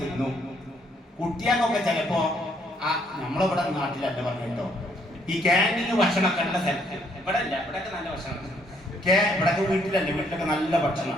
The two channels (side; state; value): both; normal; correlation 0.68